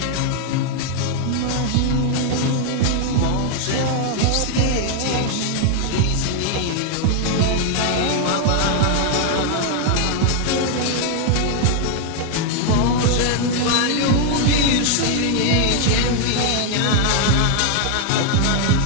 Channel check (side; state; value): both; different; correlation 0.00